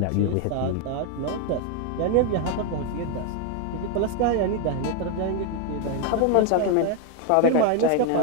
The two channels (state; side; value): different; both; correlation 0.01